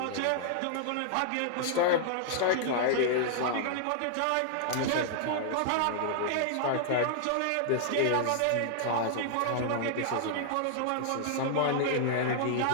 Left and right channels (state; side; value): different; both; correlation -0.01